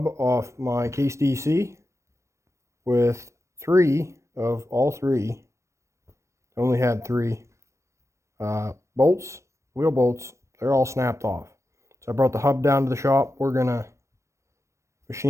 off my case DC with three of all three. I only had three bolts, wheel bolts. They're all snapped off. So I brought the hub down to the shop. We're gonna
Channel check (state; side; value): late; left; 0.14 ms